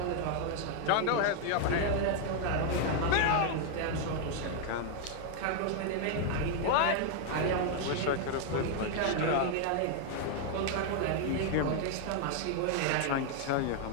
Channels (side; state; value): both; different; correlation 0.00